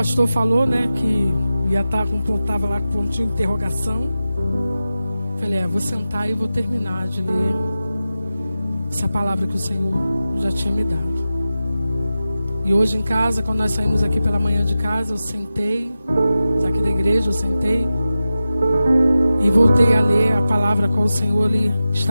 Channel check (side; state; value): both; inverted; correlation -0.92